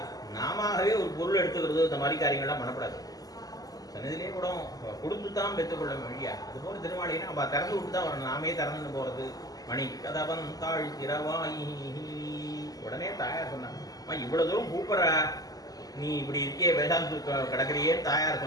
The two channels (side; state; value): right; late; 0.18 ms